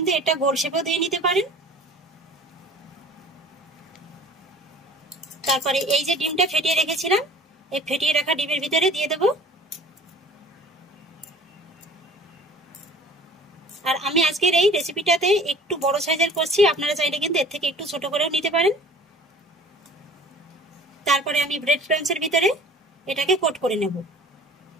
এটা গোল শেপও দিয়ে নিতে পারেন। তারপরে এই যে ডিমটা ফেটিয়ে রেখেছিলাম, এই ফেটিয়ে রাখা ডিমের ভিতরে দিয়ে দেব। আর আমি আজকের এই রেসিপিটাতে একটু বড় সাইজের করছি, আপনারা চাইলে কিন্তু এর থেকে একটু ছোট করেও নিতে পারেন। তারপরে আমি ব্রেড ক্রাম্বসের ভিতরে এটাকে কোট করে নেব।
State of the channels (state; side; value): normal; both; correlation 0.47